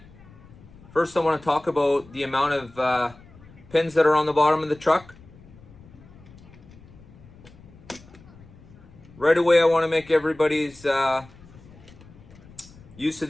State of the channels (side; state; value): left; noise; rumble, 22 dB below the sound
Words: First, I want to talk about the amount of pins that are on the bottom of the truck. Right away, I want to make everybody's use of